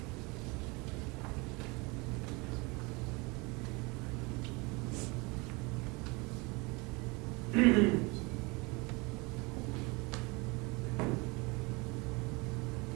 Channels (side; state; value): left; quieter; 26.7 dB